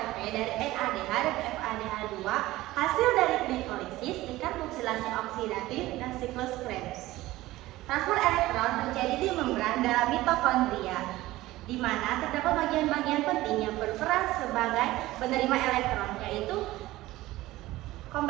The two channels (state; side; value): quieter; left; 17.3 dB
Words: dari NADH dan FADH2 hasil dari glikolisis, tingkat oksidasi oksidatif, dan siklus Krebs. Transport elektron terjadi di membran dalam mitokondria, di mana terdapat bagian-bagian penting yang berperan sebagai penerima elektron, yaitu